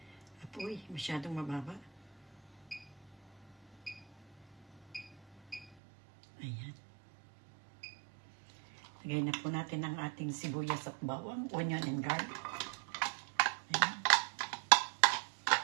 apoy. Masyadong mababa. Ayan. Lagay na po natin ang ating sibuyas at bawang, onion and garlic. Ayan.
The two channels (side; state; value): left; drops out; at 5.7 s